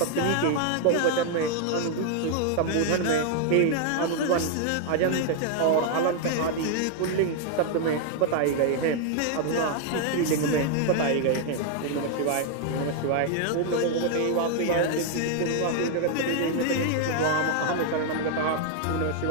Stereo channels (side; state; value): both; different; correlation 0.00